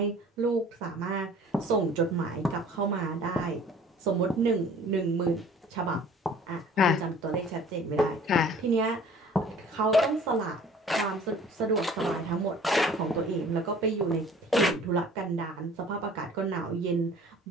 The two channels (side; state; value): both; normal; correlation 0.50